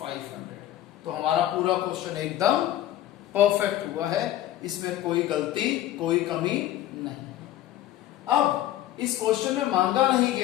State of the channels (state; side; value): quieter; right; 13.1 dB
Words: तो हमारा पूरा क्वेश्चन एकदम परफेक्ट हुआ है, इसमें कोई गलती कोई कमी नहीं। अब इस क्वेश्चन में मांगा नहीं